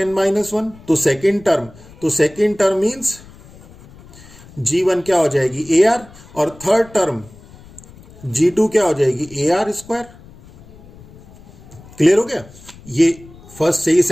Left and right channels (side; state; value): left; noise; rumble, 22 dB below the sound